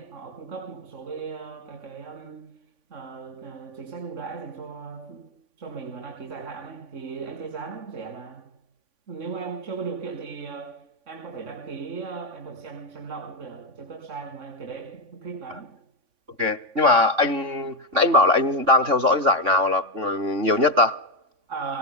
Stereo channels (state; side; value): late; left; 3.5 ms